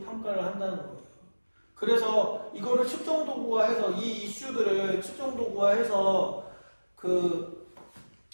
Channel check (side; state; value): both; inverted; correlation -1.00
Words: 평가를 한다는 거예요. 그래서 이거를 측정 도구화해서 이 이슈들을 측정 도구화해서